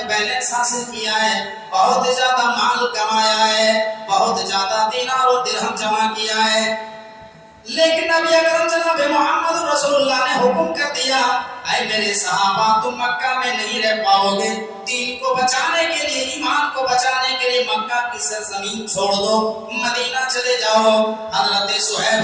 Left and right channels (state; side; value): identical; both; correlation 1.00